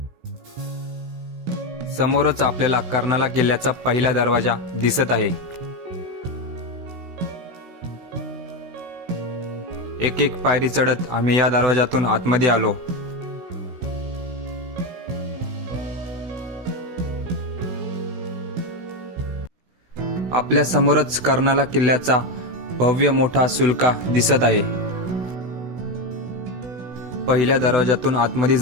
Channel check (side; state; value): left; late; 16 ms